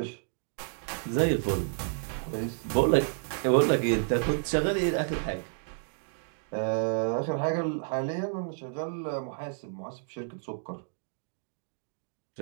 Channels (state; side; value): silent; left; digital silence